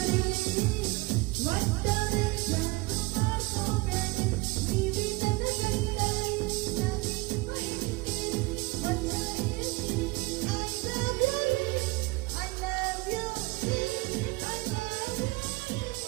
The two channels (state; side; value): quieter; left; 23.7 dB